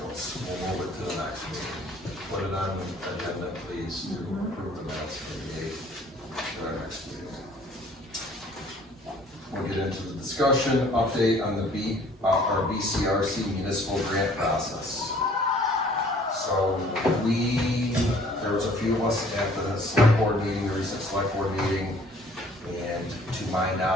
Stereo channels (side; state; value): both; normal; correlation 0.55